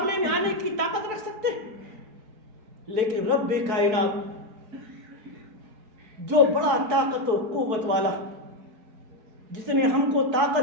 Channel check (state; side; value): late; left; 4.6 ms